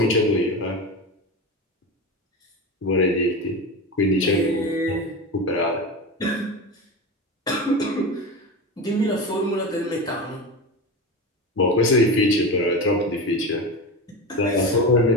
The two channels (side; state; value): both; normal; correlation 0.23